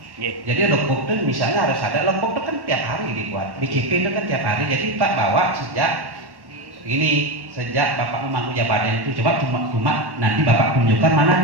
nggih. Jadi logbook itu misalnya harus ada logbook itu kan tiap hari dibuat. BCP itu kan tiap hari. Jadi Pak bawa sejak Bapak memangku jabatan itu cuma nanti Bapak tunjukkan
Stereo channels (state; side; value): late; left; 1.1 ms